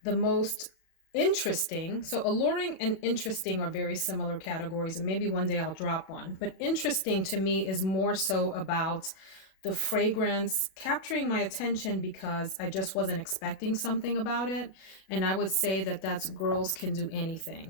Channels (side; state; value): right; late; 37 ms